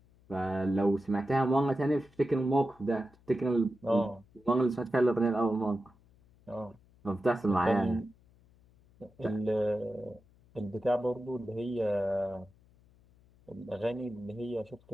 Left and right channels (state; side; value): noise; left; hum, 29 dB below the sound